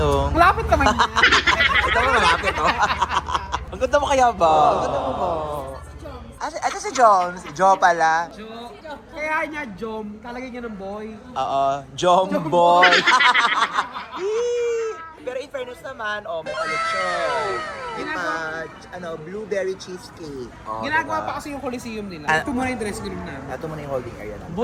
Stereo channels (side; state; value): both; identical; correlation 1.00